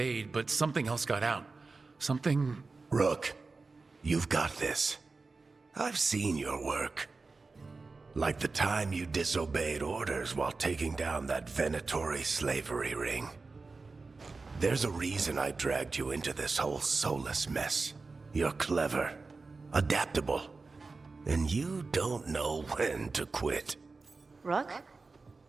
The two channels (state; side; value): quieter; left; 3.9 dB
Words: but something else got out. Something... Rook, you've got this. I've seen your work. Like the time you disobeyed orders while taking down that Venatori slavery ring. There's a reason I dragged you into this whole Solus mess. You're clever, adaptable, and you don't know when to quit. Rook?